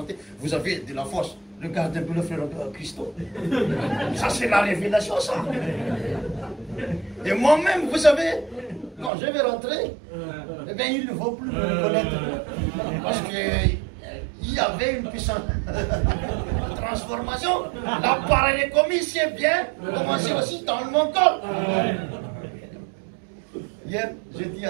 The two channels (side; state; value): left; drops out; at 9.1 s